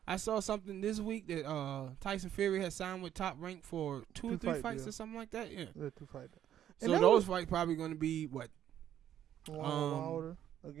I saw something this week that Tyson Fury has signed with Top Rank for two or three fights or something like that. Yeah, 2 fights. So those fights probably going to be what? Wilder.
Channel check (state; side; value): quieter; left; 10.8 dB